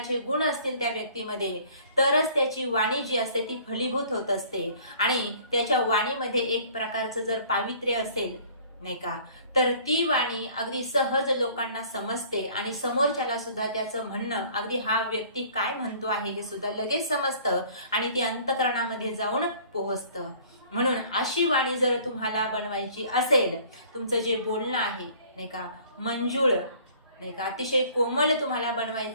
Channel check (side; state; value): both; inverted; correlation -0.53